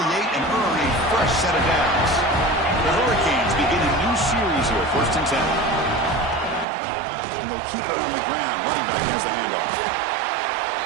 earned a fresh set of downs. The Hurricanes begin a new series here, 1st and 10. And they'll keep it on the ground. Running back has the handoff.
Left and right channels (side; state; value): left; drops out; at 6.7 s